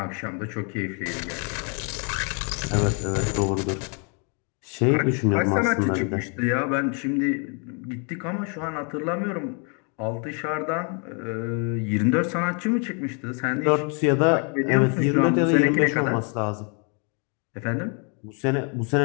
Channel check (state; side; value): quieter; right; 37.4 dB